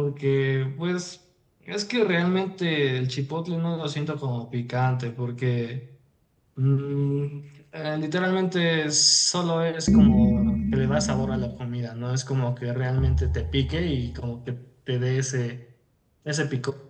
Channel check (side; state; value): both; identical; correlation 1.00